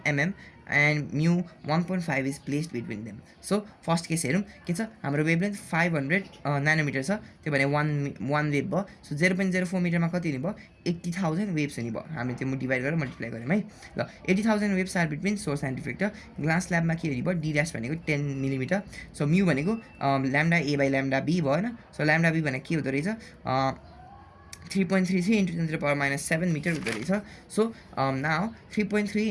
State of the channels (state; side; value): identical; both; correlation 1.00